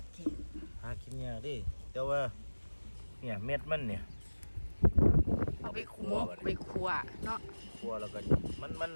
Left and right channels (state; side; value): inverted; both; correlation -1.00